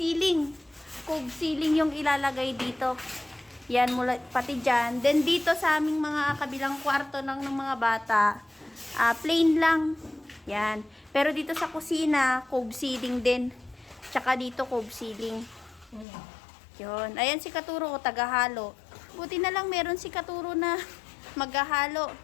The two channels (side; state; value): right; drops out; at 16.1 s